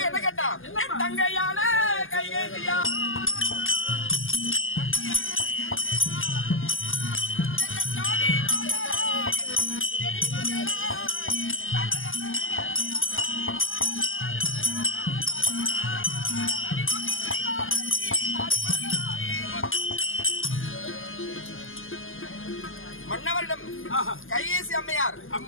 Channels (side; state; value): right; late; 0.59 ms